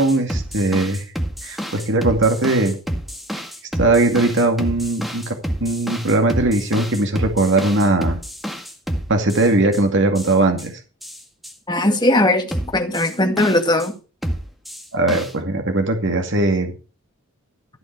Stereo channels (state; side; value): normal; both; correlation 0.37